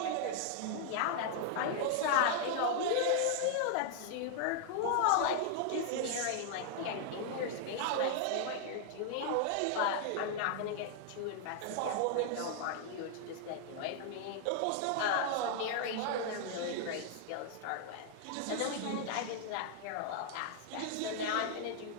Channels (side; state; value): both; different; correlation 0.00